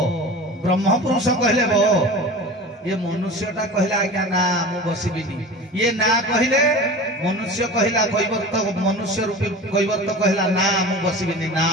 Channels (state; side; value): normal; both; correlation 0.35